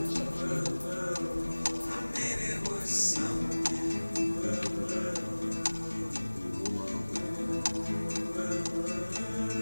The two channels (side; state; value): both; inverted; correlation -1.00